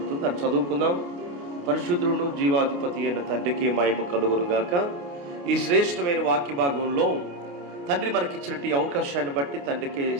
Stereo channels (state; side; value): late; left; 28 ms